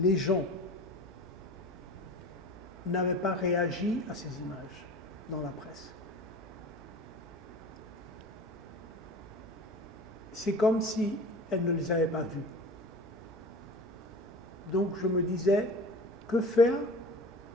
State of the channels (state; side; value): normal; both; correlation 0.38